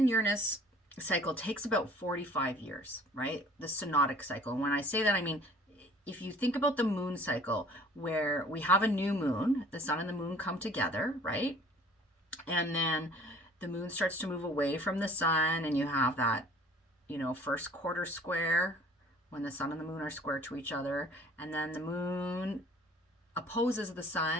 Uranus cycle takes about 45 years, right? The synodic cycle. And when I say that, I mean, if you think about the moon cycle, where we have a new moon, the sun and the moon come together, right? And then the moon starts to move away from the sun, and you have that, first quarter square when the sun and the moon are square to each other. And then the moon opposes the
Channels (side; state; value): both; normal; correlation 0.51